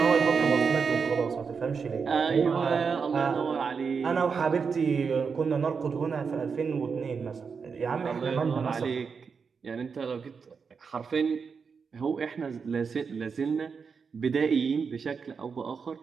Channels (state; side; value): quieter; left; 5.7 dB